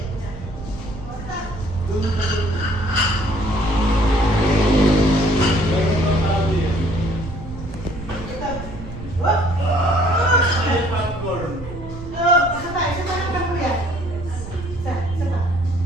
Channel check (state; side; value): noise; right; rumble, 12 dB below the sound